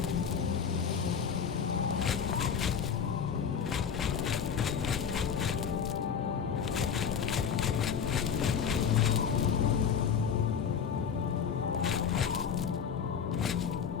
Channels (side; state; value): right; quieter; 7.2 dB